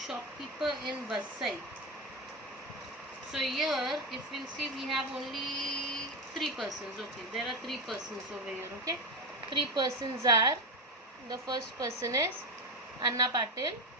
in Vasai. So here, if we'll see, we have only 3 persons. Okay, there are 3 persons over here. Okay, 3 persons are, the first person is Anna Patil,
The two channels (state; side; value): normal; both; correlation 0.14